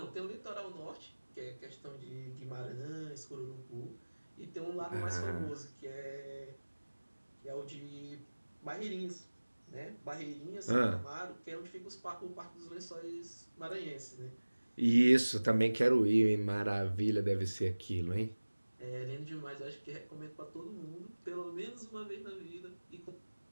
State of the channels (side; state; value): both; inverted; correlation -1.00